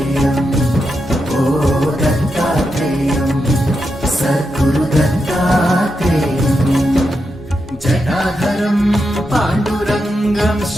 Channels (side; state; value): both; normal; correlation 0.86